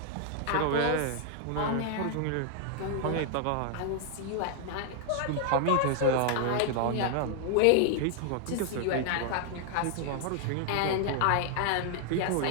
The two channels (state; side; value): different; both; correlation 0.00